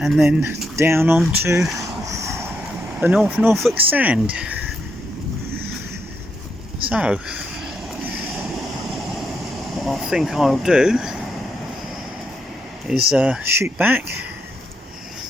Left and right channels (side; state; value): both; normal; correlation 0.80